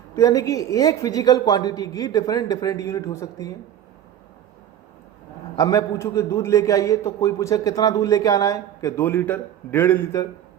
तो यानी कि एक फिजिकल क्वांटिटी की डिफरेंट यूनिट हो सकती है। अब मैं पूछूं कि दूध लेके आइए, तो कोई पूछे कितना दूध लेके आना है, कि 2 लीटर, 1.5 लीटर,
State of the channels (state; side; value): quieter; left; 10.5 dB